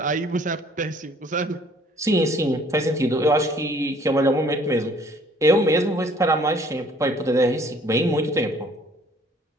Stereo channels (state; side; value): normal; both; correlation 0.58